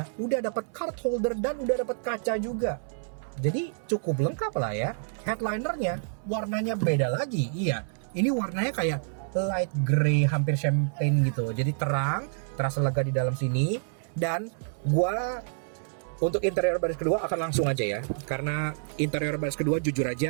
udah dapat card holder dan udah dapat kaca juga. Jadi cukup lengkap lah ya. Headlinernya warnanya beda lagi. Iya, ini warnanya kayak light grey hampir champagne gitu. Jadi terang, terasa lega di dalam sini. Dan gua untuk interior baris kedua akan langsung aja ya, karena interior baris kedua jujur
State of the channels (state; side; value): silent; left; 59 dB below the other